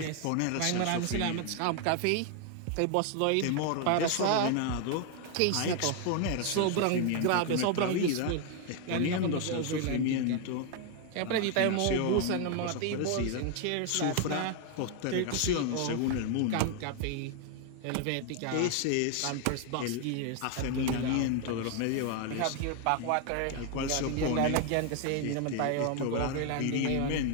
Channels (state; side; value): different; both; correlation 0.01